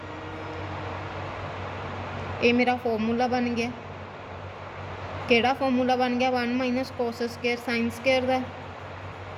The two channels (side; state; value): both; identical; correlation 1.00